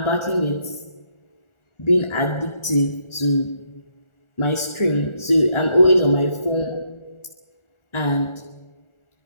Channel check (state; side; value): late; right; 1.4 ms